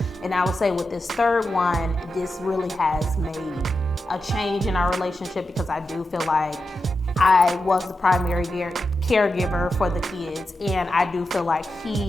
And I would say with this third one, this really has made a change in our relationship, because I do feel like I was the primary caregiver for the kids, and I do feel like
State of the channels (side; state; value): both; normal; correlation 0.89